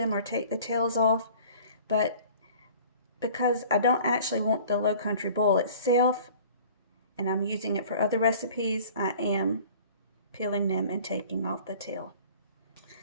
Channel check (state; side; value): inverted; both; correlation -0.47